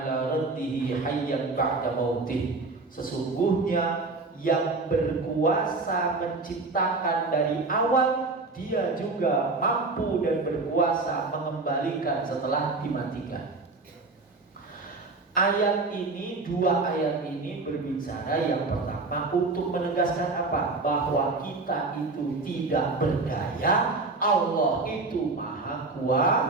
raddihi hayyan ba'da mautih. Sesungguhnya yang berkuasa menciptakan dari awal, dia juga mampu dan berkuasa mengembalikan setelah dimatikan. Ayat ini, dua ayat ini berbicara yang pertama untuk menegaskan apa? Bahwa kita itu tidak berdaya, Allah itu maha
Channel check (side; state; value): left; quieter; 3.6 dB